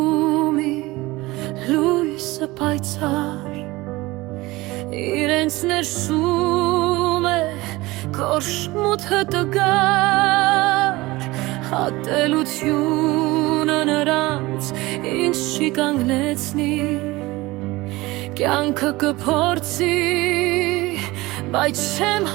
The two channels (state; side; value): quieter; left; 20.5 dB